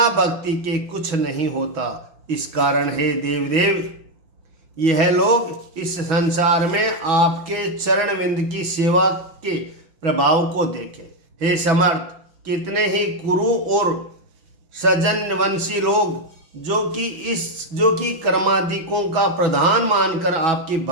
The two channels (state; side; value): late; left; 5.9 ms